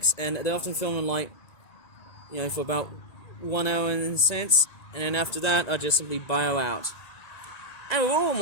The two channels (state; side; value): late; right; 1.9 ms